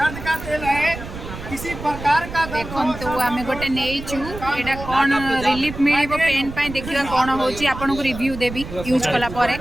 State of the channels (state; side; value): noise; right; rumble, 11 dB below the sound